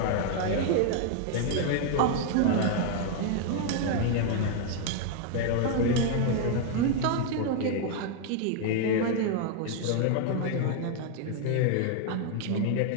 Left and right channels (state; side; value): different; both; correlation 0.00